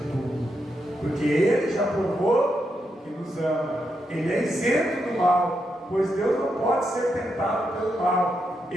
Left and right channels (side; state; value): both; normal; correlation 0.83